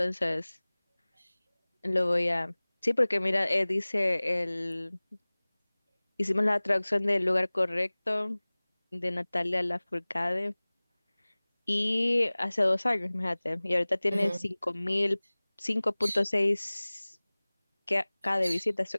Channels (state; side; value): inverted; both; correlation -1.00